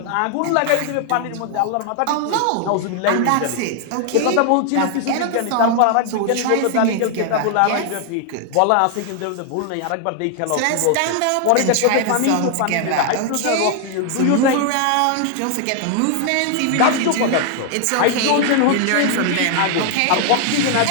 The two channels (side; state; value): both; different; correlation 0.00